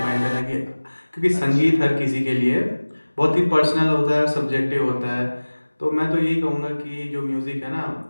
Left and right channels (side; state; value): both; inverted; correlation -1.00